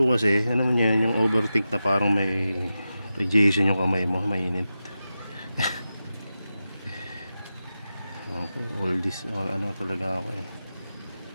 kasi ano man yan, yung overthink na parang may radiation yung kamay mo, mainit. All this, ano talaga ako eh,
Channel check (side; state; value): both; inverted; correlation -0.92